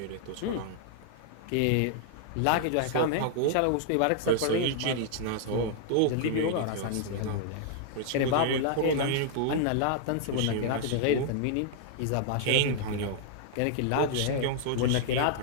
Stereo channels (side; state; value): both; different; correlation -0.01